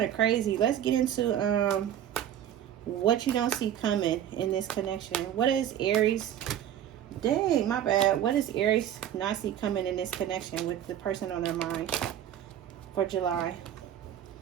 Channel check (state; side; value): quieter; left; 10.6 dB